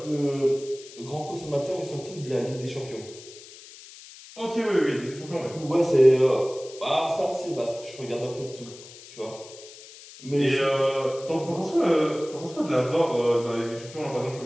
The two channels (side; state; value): left; noise; hiss, 18 dB below the sound